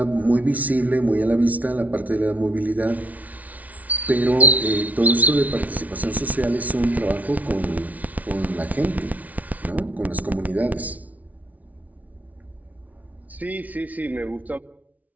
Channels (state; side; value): late; left; 0.072 ms